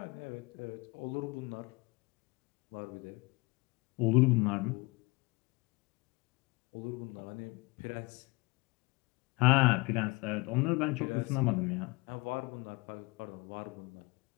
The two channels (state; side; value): quieter; right; 25.5 dB